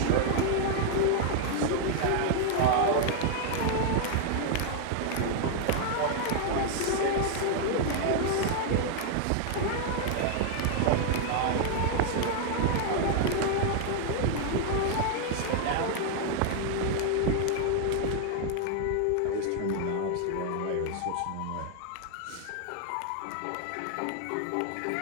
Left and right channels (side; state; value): both; different; correlation 0.00